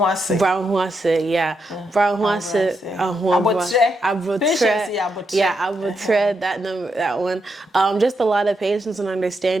yeah. Brown huase, abutre, that one. Just a lot of patience and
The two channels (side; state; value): both; normal; correlation 0.82